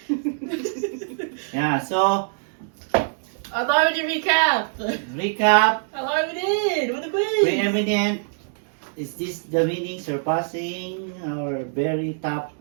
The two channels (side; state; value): left; silent; digital silence